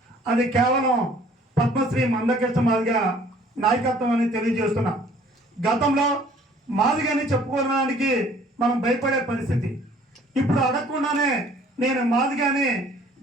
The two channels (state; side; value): normal; both; correlation 0.56